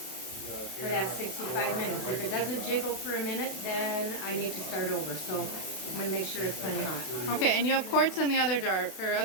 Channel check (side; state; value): right; late; 32 ms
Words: for that 65 minutes. If it doesn't jiggle for a minute, then I need to start over. So I'm going to make sure it's plenty hot. Okay, and you have quarts in the other jar or